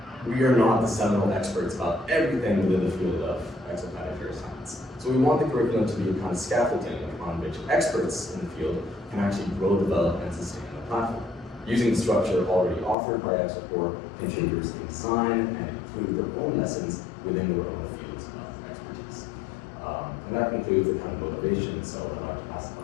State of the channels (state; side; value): drops out; right; at 13.0 s